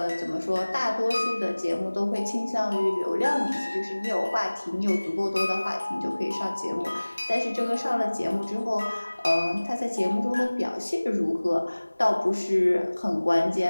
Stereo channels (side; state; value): both; inverted; correlation -1.00